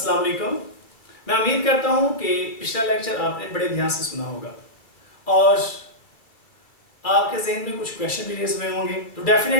वालेकुम। मैं उम्मीद करता हूँ कि पिछला लेक्चर आपने बड़े ध्यान से सुना होगा और आपके जहन में कुछ क्वेश्चन भी रेज हुए होंगे। तो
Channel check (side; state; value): right; late; 2.4 ms